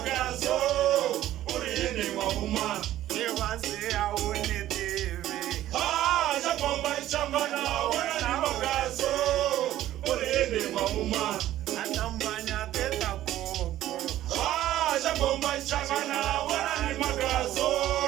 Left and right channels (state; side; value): quieter; left; 13.5 dB